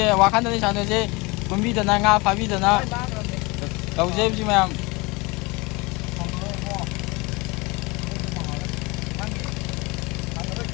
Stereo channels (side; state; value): right; quieter; 25.4 dB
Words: 자네지. 분비드나 nga 파비드나. Đâu dễ chứ mẹ.